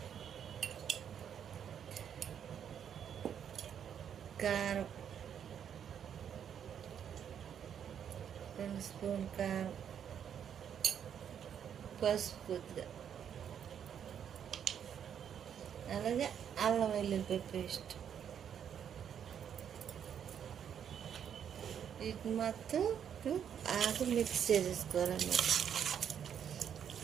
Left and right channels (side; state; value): left; quieter; 8.6 dB